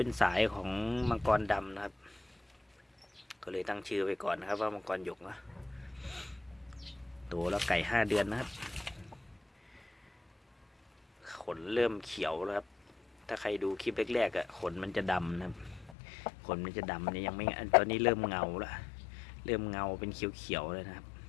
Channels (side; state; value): right; drops out; at 16.0 s